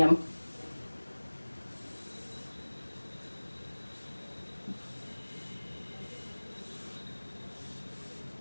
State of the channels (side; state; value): both; inverted; correlation -1.00